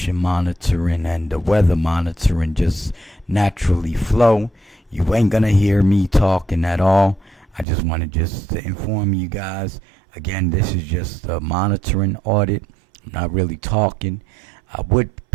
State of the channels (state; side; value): drops out; left; at 7.7 s